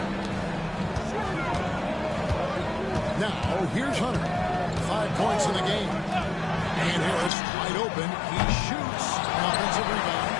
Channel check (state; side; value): drops out; right; at 7.3 s